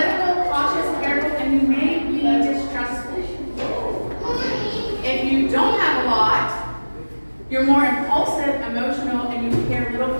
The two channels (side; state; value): both; inverted; correlation -1.00